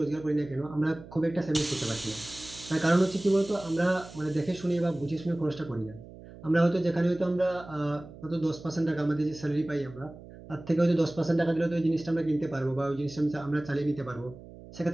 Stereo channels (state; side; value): noise; right; hum, 17 dB below the sound